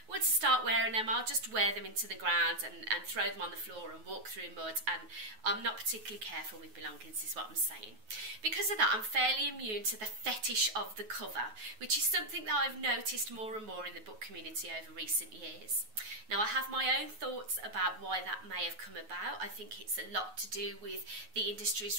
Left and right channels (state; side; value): late; left; 9.4 ms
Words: once I start wearing them, I'll just wear them into the ground and throw them on the floor and walk through mud, and I'm not particularly careful with belongings, is what I'm saying. Because of that, I'm fairly immune to the fetish of the cover, which is something that I've noticed more and more in the book community over recent years. Now, I have my own thoughts about why that may have come about. I think it's a lot to do with the